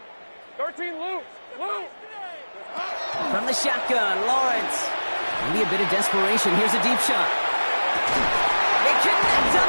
13 loose. From the shotgun, Lawrence. Maybe a bit of desperation. Here's a deep shot. They connect on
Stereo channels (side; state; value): both; inverted; correlation -1.00